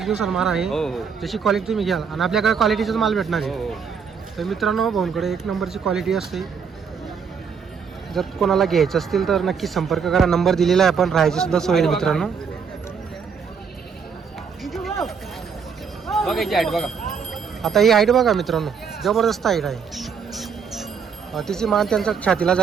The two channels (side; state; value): left; quieter; 6.3 dB